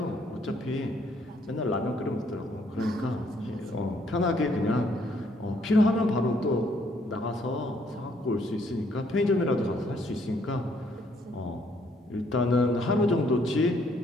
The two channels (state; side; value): normal; both; correlation 0.68